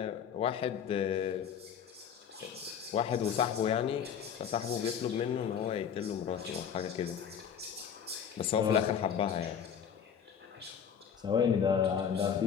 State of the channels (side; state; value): right; quieter; 7.9 dB